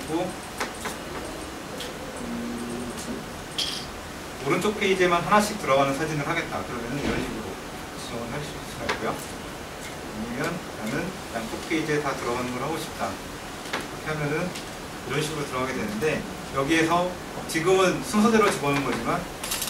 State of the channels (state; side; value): identical; both; correlation 1.00